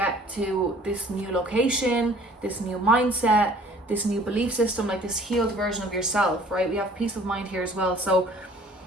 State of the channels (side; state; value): both; normal; correlation 0.54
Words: to this new location, this new mindset, this new belief system, like this healed version of yourself, right? We have peace of mind here as well. So